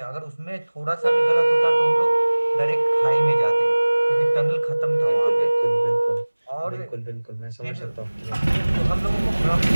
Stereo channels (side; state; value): both; inverted; correlation -1.00